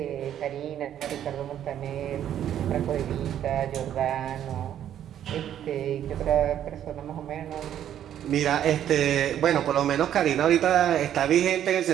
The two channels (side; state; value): left; quieter; 10.6 dB